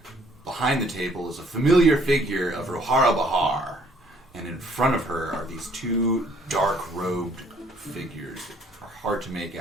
behind the table is a familiar figure of Rohara Bahar, and in front of her are these two dark-robed figures that are hard to make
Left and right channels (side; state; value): both; normal; correlation 0.62